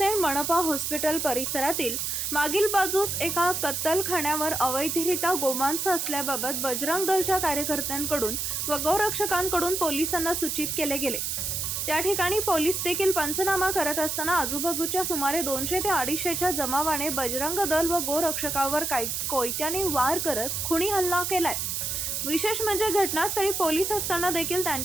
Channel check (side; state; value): right; noise; hiss, 2 dB below the sound